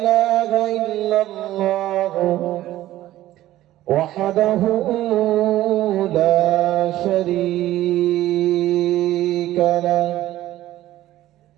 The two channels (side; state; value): left; quieter; 14.6 dB